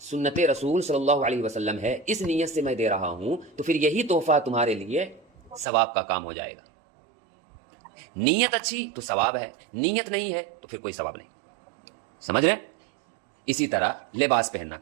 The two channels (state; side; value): drops out; left; at 5.7 s